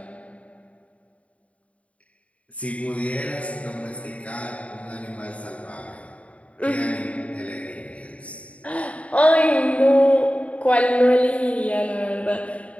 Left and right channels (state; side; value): late; right; 0.065 ms